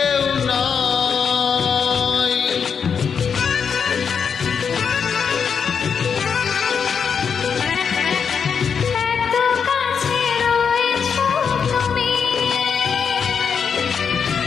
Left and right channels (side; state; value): right; quieter; 6.6 dB